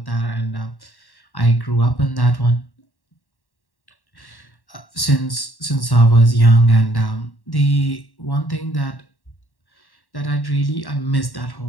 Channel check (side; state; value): right; late; 1.1 ms